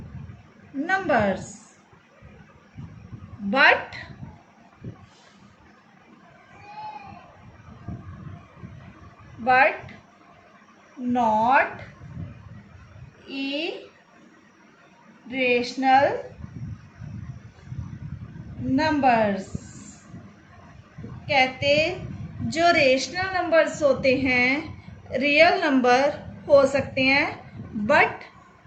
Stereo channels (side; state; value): both; identical; correlation 1.00